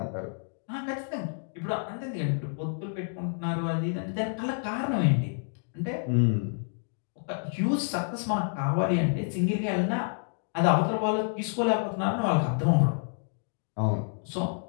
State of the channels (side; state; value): right; silent; digital silence